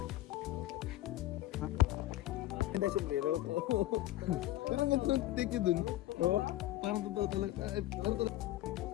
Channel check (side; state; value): right; quieter; 15.4 dB